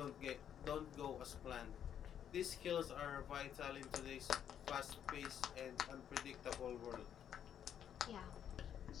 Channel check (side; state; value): right; quieter; 9.3 dB